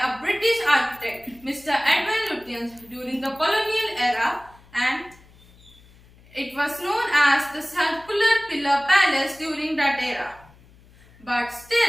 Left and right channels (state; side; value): noise; left; hum, 26 dB below the sound